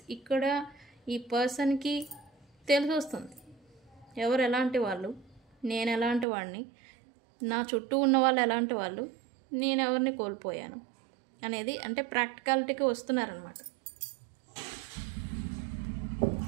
ఇక్కడ ఈ పర్సన్కి తెలిసి వస్తుంది ఎవరు ఎలాంటి వాళ్ళు, నేను ఎలాంటి వాడిని, నా చుట్టూ ఉన్న వాళ్ళు ఎలాంటి వాళ్ళు, నేను ఎవరిని కోల్పోయాను అనేది. అంటే ప్రాక్టికాలిటీకి వస్తున్నారనమాట.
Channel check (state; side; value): drops out; left; at 6.2 s